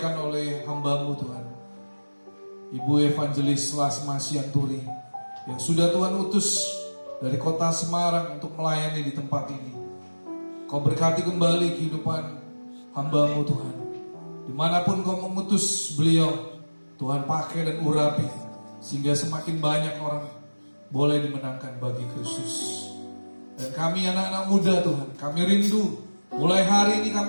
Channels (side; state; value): both; inverted; correlation -1.00